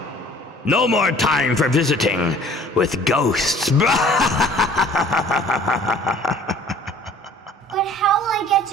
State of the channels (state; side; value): normal; both; correlation 0.52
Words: No more time for visiting with ghosts. But how will I get